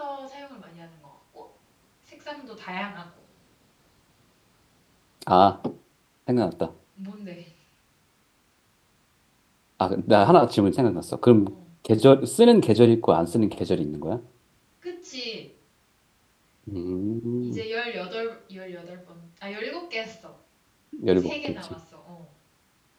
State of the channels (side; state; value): both; identical; correlation 1.00